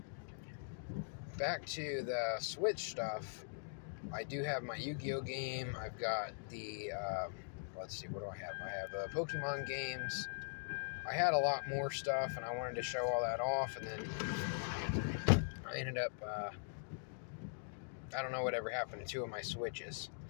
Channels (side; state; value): right; silent; digital silence